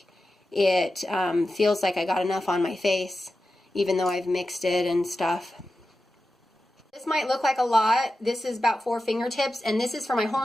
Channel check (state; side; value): normal; both; correlation 0.92